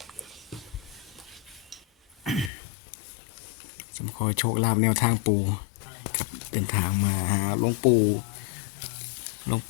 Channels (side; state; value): right; drops out; at 2.5 s